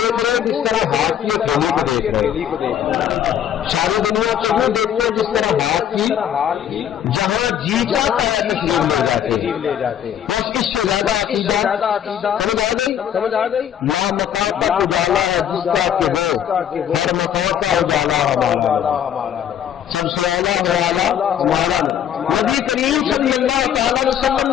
رہے ہیں جس طرح ہاتھ کی ہتھیلی کو دیکھ رہے ہیں، ساری دنیا کو یوں دیکھتے ہیں جس طرح ہاتھ کی، جہاں جی چاہتا ہے تشریف لے جاتے ہیں۔ بس اس سے زیادہ عقیدہ سمجھ آ گئی؟ لا مکان تک اجالا ہے جس کا کہ وہ ہر مکان کا اجالا ہمارا نبی، سب سے اولا ہو اعلیٰ ہمارا نبی کریم صلی اللہ تعالی علیہ وسلم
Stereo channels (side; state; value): right; quieter; 9.7 dB